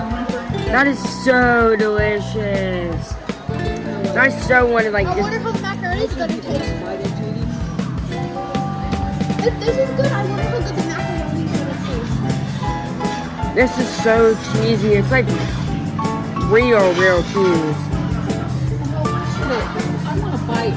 That is so delicious. I so wanted like I wonder this. how the macaroni is going to taste. If this is good, I wonder how good the macaroni is going to taste. This is so cheesy. It's like real cheese. I want a bite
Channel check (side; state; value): both; identical; correlation 1.00